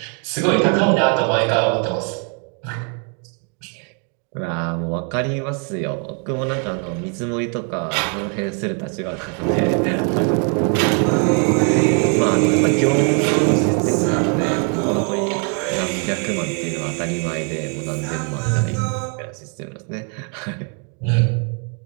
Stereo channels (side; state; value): left; quieter; 39.5 dB